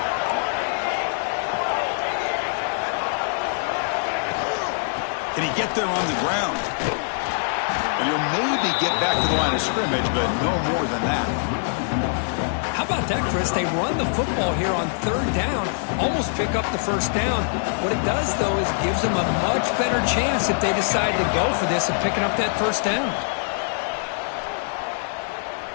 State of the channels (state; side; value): silent; right; digital silence